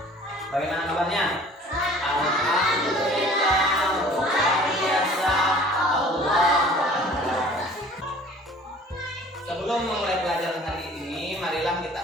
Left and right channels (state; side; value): normal; both; correlation 0.49